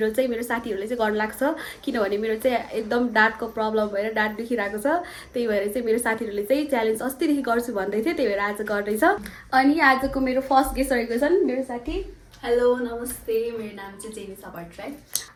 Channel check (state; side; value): identical; both; correlation 1.00